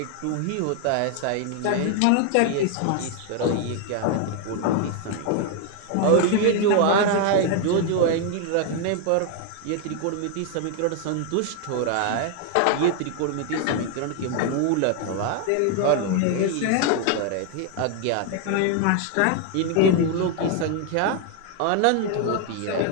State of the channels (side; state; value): both; different; correlation 0.00